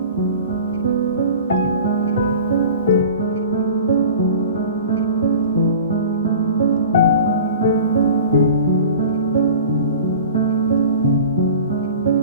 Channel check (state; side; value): inverted; both; correlation -0.40